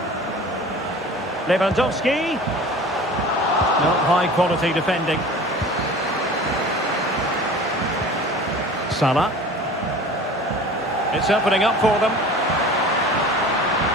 Not high quality defending. Salah. It's opening up for them.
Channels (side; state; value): both; normal; correlation 0.40